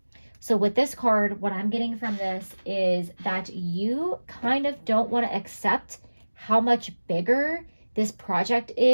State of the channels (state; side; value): inverted; both; correlation -1.00